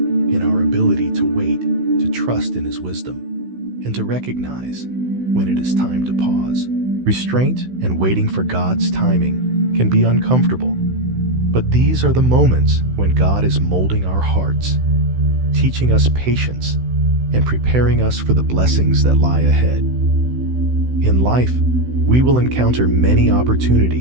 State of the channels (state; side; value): late; left; 16 ms